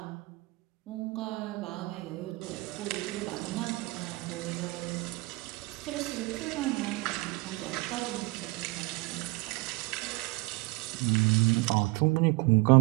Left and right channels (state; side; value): quieter; left; 23.7 dB